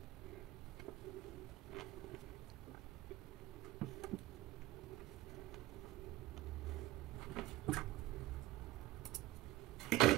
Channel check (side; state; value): left; quieter; 16.7 dB